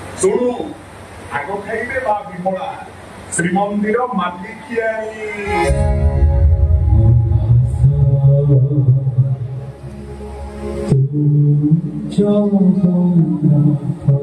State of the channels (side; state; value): both; identical; correlation 1.00